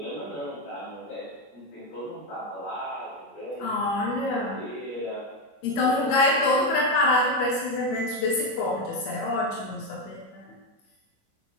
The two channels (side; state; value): right; late; 22 ms